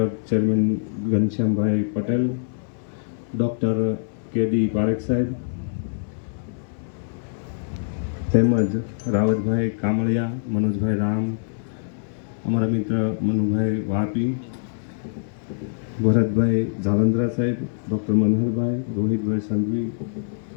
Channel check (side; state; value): right; silent; 63 dB below the other